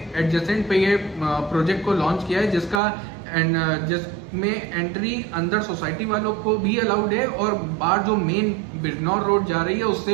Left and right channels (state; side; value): drops out; left; at 2.8 s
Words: एडजेसेंट पे ये प्रोजेक्ट को लॉन्च किया है जिसमें एंट्री अंदर सोसाइटी वालों को भी अलाउड है और बाहर जो मेन बिजनौर रोड जा रही है